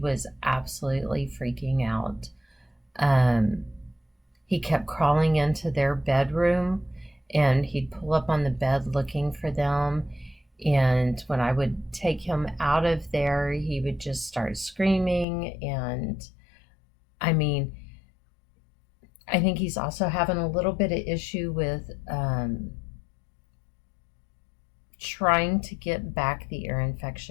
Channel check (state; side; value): drops out; right; at 15.2 s